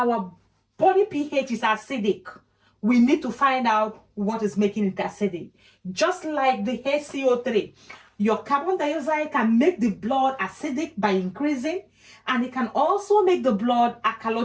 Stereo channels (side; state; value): both; identical; correlation 1.00